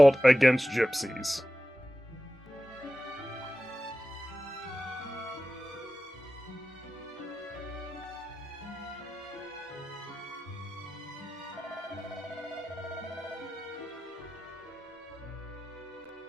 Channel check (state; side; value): normal; both; correlation 0.94